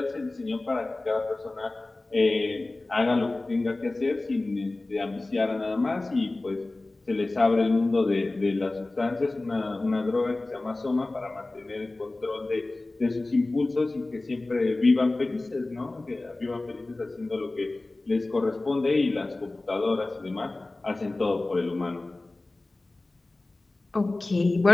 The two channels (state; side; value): quieter; right; 3.0 dB